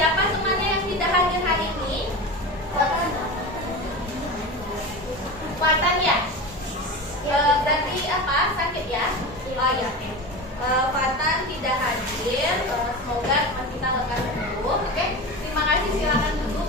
siapa temannya yang tidak hadir hari ini? Watan ya? Berarti apa? Sakit ya? Oh ya, oke. Watan tidak hadir. Semoga teman kita lekas sembuh. Oke, terima kasih. Silakan duduk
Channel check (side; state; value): both; normal; correlation 0.27